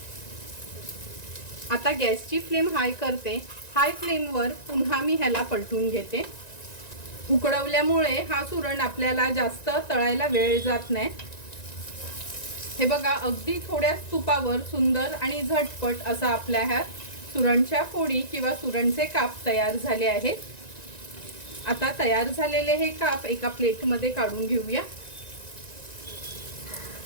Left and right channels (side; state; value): right; late; 1.9 ms